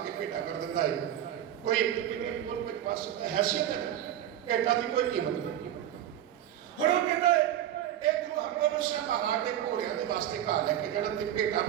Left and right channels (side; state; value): left; quieter; 11.5 dB